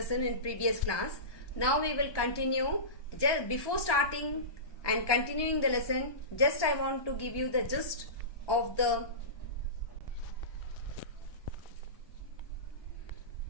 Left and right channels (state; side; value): late; right; 1.2 ms